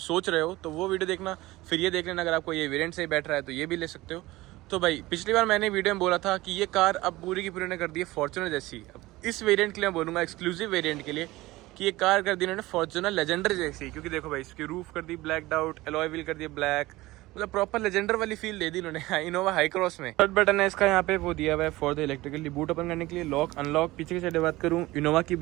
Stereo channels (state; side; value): quieter; left; 19.0 dB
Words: रहे हो, तो वो वीडियो देखना, फिर ये देख लेना। अगर आपको ये वेरिएंट से बैठ रहा है तो ये भी ले सकते हो। तो भाई पिछली बार मैंने वीडियो में बोला था कि ये कार अब पूरी की पूरी ने कर दी है फॉर्च्यूनर जैसी। अब इस वेरिएंट के लिए मैं बोलूँगा, एक्सक्लूसिव वेरिएंट के लिए, कि ये कार कर दी इन्होंने फॉर्च्यूनर लेजेंडर जैसी। क्योंकि देखो भाई, इसकी रूफ कर दी ब्लैक आउट, एलॉय व्हील कर दिया ब्लैक, मतलब प्रॉपर लेजेंडर वाली फील दे दी इन्होंने इनोवा हाई क्रॉस में। थर्ड बटन है इसका, यहाँ पे वो दिया हुआ है for the electrically boot open करने के लिए। लॉक अनलॉक, पीछे की साइड बात करूँ, इनोवा की